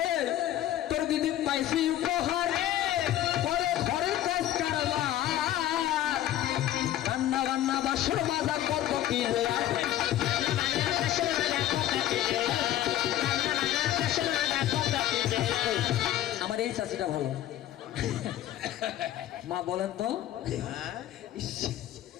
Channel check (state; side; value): quieter; right; 12.6 dB